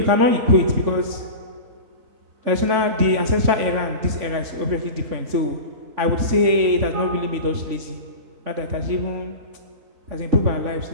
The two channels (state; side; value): late; left; 3.5 ms